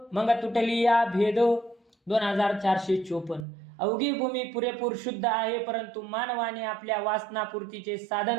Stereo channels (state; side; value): drops out; left; at 3.5 s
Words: मग तुटली या भेद. 2454. अवघी भूमी पुरेपूर शुद्ध आहे, परंतु मानवाने आपल्या वासनापूर्तीचे